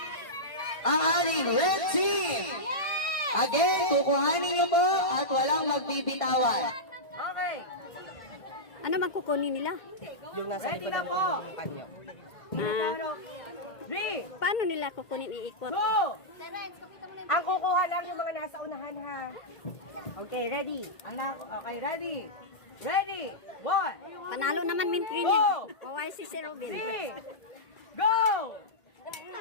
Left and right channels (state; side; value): late; right; 1.5 ms